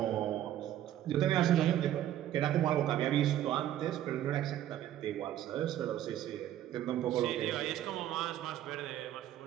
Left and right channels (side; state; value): left; quieter; 12.1 dB